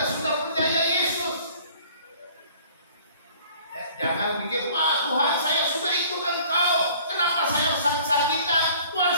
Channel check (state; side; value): inverted; both; correlation -0.52